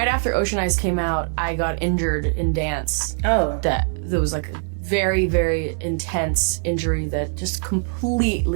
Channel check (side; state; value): left; silent; 61 dB below the other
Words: after Ocean Eyes came out, I got injured in dance. Oh. There was like a very, very intense injury that just